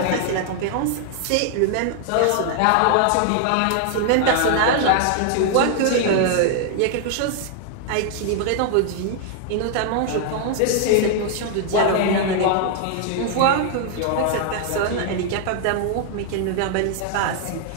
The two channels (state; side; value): different; both; correlation 0.00